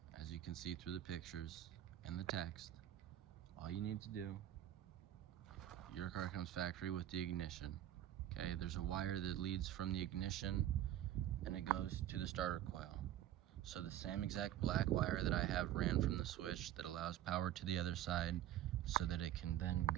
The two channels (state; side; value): quieter; left; 12.4 dB